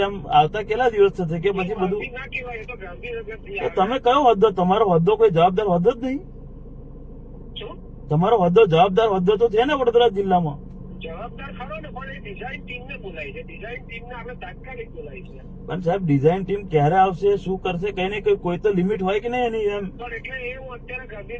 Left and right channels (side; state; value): both; identical; correlation 1.00